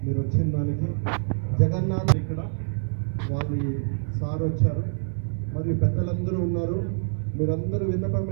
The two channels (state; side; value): silent; left; digital silence